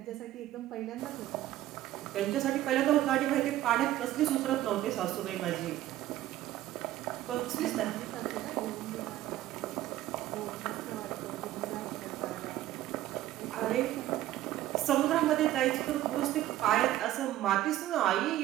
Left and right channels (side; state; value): left; quieter; 14.0 dB